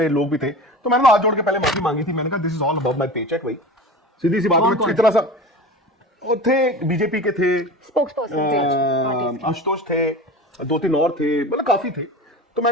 लोग भी थे, तो मैंने हाथ जोड़ के पहले माफी मांगी थी। मैंने कहा this is all about my paycheque भाई, सीधी सी बात है। इतना सा वो थे, बीजेपी के थे, आशुतोष थे, 2-3 और थे, मतलब काफी थे। तो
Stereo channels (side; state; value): both; normal; correlation 0.33